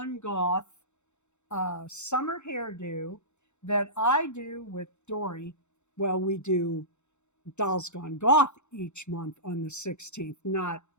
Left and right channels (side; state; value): right; late; 0.83 ms